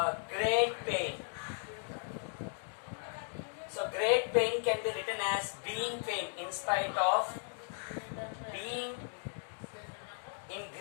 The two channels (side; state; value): right; silent; 54 dB below the other